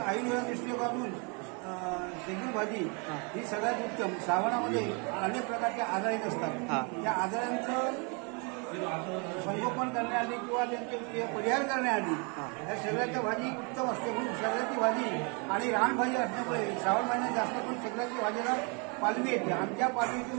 दृष्टिकोनातून शेगुल भाजी ही सगळ्यात उत्तम. श्रावणामध्ये अनेक प्रकारचे आजार येत हा. असतात. त्या आजारांचं संगोपन करण्याआधी किंवा त्यांचे परिहार करण्याआधी या शेगलाच्या भाजी उत्तम असते. म्हणून शेगलाची भाजी आणि रानभाजी असल्यामुळे श्रावण महिन्यात जास्त करून शेगलाची भाजीला पालवी येते. आमच्या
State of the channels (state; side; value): quieter; left; 34.1 dB